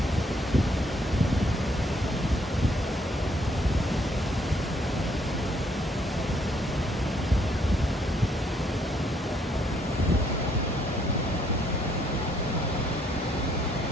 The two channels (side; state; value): both; normal; correlation 0.69